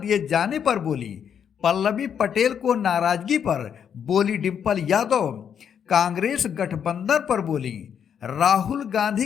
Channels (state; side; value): quieter; right; 8.1 dB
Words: जाने पर बोली। पल्लवी पटेल को नाराजगी पर बोली डिंपल यादव। कांग्रेस गठबंधन पर बोली। राहुल